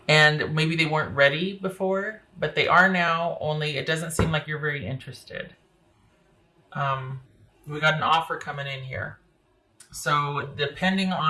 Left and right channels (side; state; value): both; identical; correlation 1.00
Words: And maybe they weren't ready before, but they are now, only it doesn't seem like you're very interested. We got an offer coming in here. So depending